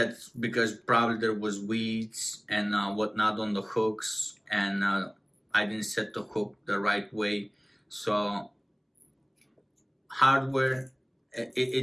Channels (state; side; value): identical; both; correlation 1.00